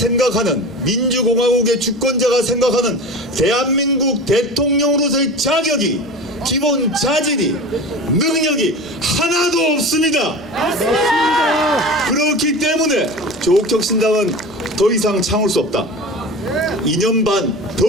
민주공화국의 주권자가 생각하는 대한민국 대통령으로서의 자격이 기본 자질이 능력이 하나도 없습니다. 맞습니다. 그렇기 때문에 조국혁신당은 더 이상 참을 수 없다. 2년 반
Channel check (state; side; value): normal; both; correlation 0.32